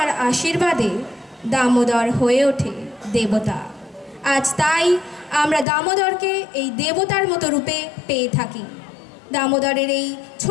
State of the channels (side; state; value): right; drops out; at 5.7 s